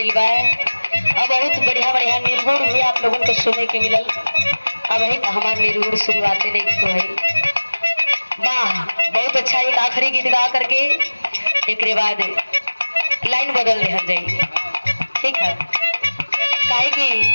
बा। अब बहुत बढ़िया बढ़िया निर्गुण भी आप लोगों को सुनने के मिलल। अब ही हमारे निर्गुण शुरुआते नहीं तो है। वाह बहुत अच्छा। एक आखिरी गीत गा करके एक बाद लाइन बदल दे जाइए, ठीक है? काहे कि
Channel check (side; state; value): both; inverted; correlation -1.00